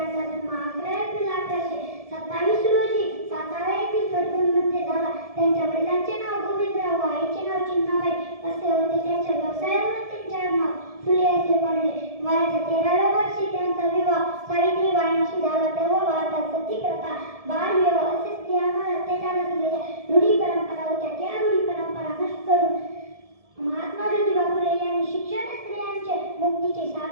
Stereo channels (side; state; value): left; late; 1.7 ms